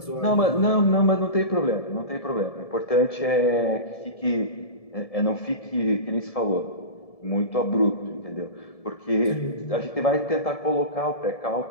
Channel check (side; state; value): right; late; 1.7 ms